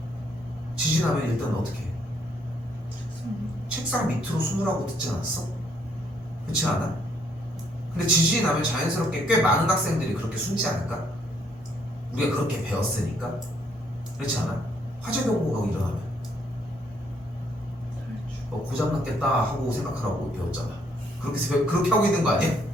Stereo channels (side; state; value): both; normal; correlation 0.69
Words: 지진하면 일단 어떻게 해? 책상 밑으로 숨으라고 듣지 않았어? 그렇지 않아? 근데 지진이 나면 자연스럽게 꽤 많은 학생들이 그렇게 숨지 않을까? 우리가 그렇게 배웠으니까. 그렇지 않아? 화재 경보가 일어나면 고장났겠다 하고 생각하라고 배웠잖아. 그렇게 하고 있는 거 아니야?